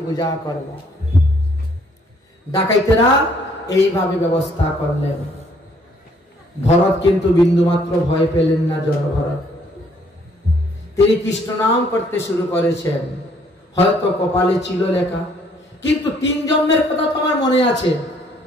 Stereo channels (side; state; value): both; normal; correlation 0.64